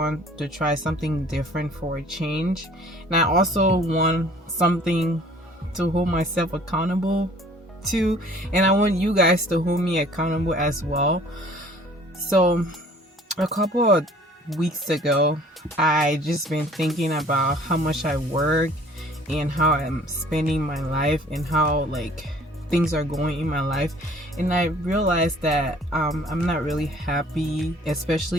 try something different for a change, and I also want something to hold myself accountable to, and I want you guys to hold me accountable as well. So a couple of weeks ago, I just been thinking about how much I work and how I'm spending my life and how things are going in my life, and I realized that I'm not really happy,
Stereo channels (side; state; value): both; normal; correlation 0.53